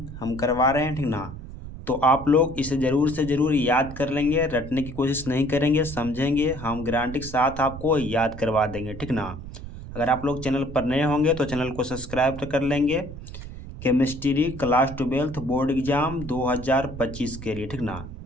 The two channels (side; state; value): right; noise; rumble, 11 dB below the sound